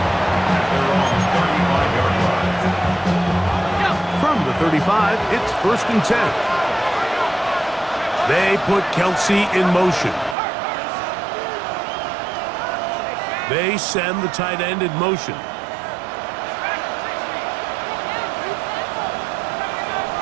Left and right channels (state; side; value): drops out; left; at 10.4 s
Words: From the 35, it's 1st and 10. They put Kelsey in motion. They send the tight end in motion.